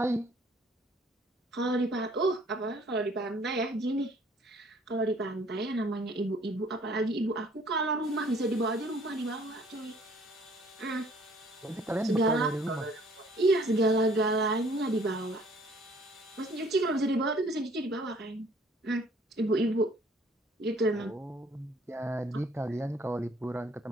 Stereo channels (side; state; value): both; normal; correlation 0.58